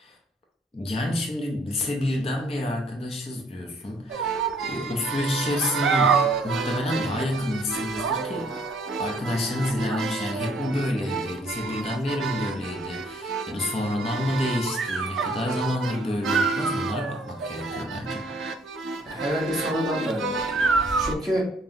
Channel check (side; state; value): both; normal; correlation 0.63